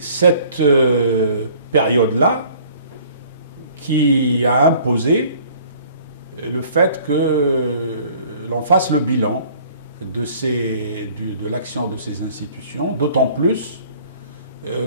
période-là qui a imposé le fait que l'on fasse le bilan de l'action de ces institutions, d'autant plus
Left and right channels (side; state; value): both; inverted; correlation -0.53